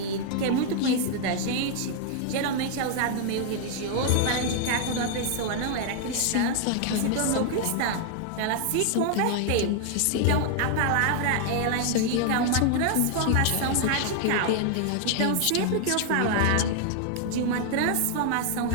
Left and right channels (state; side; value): different; both; correlation 0.00